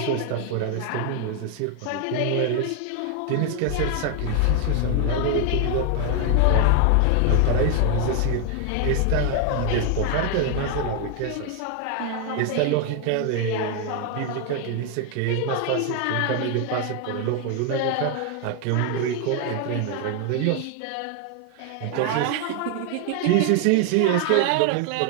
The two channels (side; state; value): both; different; correlation 0.01